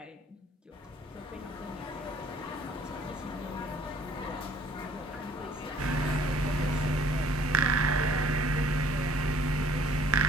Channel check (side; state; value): both; normal; correlation 0.57